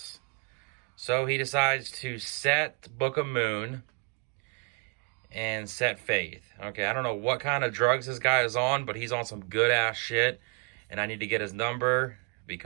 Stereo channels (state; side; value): quieter; left; 39.3 dB